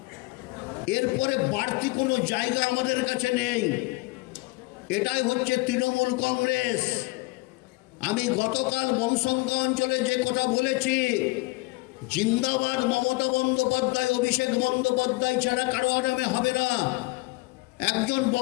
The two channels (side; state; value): right; quieter; 23.5 dB